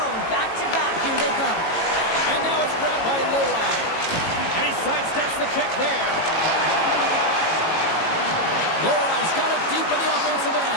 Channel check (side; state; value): right; late; 18 ms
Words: back-to-back. Here they come. And now it's grabbed by Loai. And he sidesteps the check there. Loai's got it deep in the offensive